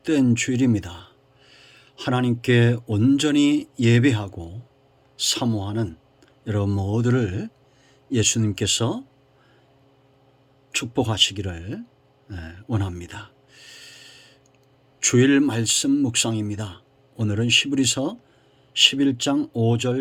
주일입니다. 하나님께 온전히 예배하고 사모하는 여러분 모두를 예수님께서 축복하시기를 원합니다. 주일 말씀 묵상입니다. 오늘은 히브리서 11장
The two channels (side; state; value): both; identical; correlation 1.00